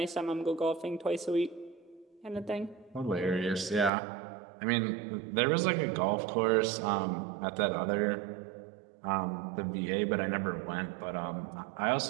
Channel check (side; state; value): left; drops out; at 3.9 s